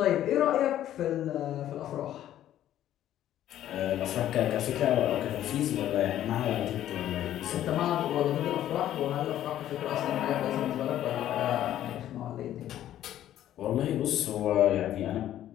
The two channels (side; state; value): right; quieter; 12.1 dB